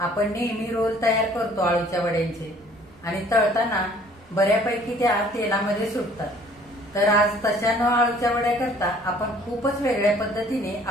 नेहमी रोल तयार करतो आळूच्या वड्यांचे आणि तळताना बऱ्यापैकी त्या तेलामध्ये सुटतात. तर आज तशा न आळूच्या वड्या करता आपण खूपच वेगळ्या पद्धतीने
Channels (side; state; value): both; normal; correlation 0.56